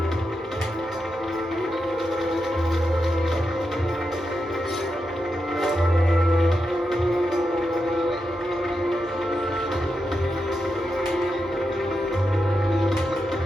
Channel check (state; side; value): normal; both; correlation 0.87